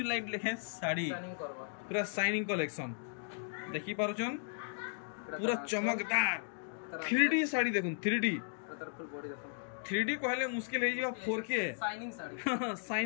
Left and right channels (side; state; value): right; silent; digital silence